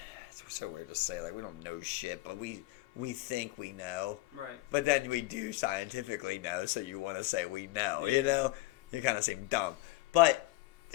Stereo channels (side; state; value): right; quieter; 18.4 dB